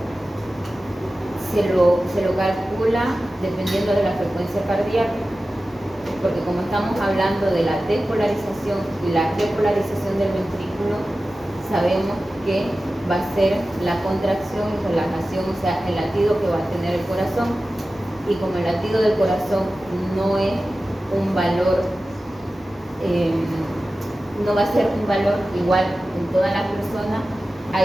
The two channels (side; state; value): both; normal; correlation 0.95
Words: Se lo calcula dependiendo de la frecuencia cardíaca, porque como estamos hablando de la despolarización y la repolarización del ventrículo, sabemos que va a ser la contracción y relajación, o sea, el latido que va a tener el corazón. Y como el latido del corazón no es un valor, no va a ser un valor igual en todas las personas,